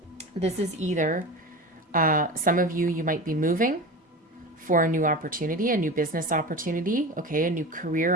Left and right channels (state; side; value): normal; both; correlation 0.29